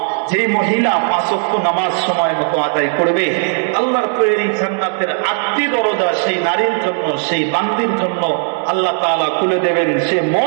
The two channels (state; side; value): silent; left; digital silence